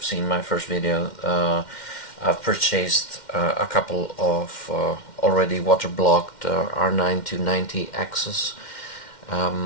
seen my first video, I've purchased a couple of already water-blocked R9-290 Asus.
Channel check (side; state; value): right; late; 2.1 ms